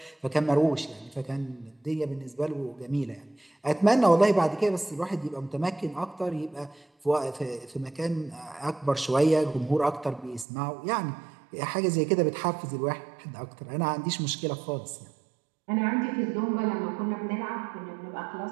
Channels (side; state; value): left; drops out; at 10.5 s